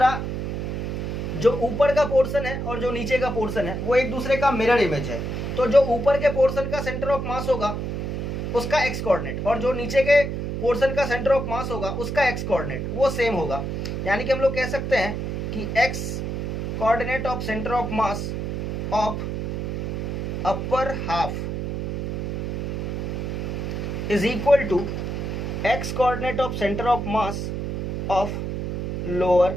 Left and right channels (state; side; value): noise; right; hum, 3 dB below the sound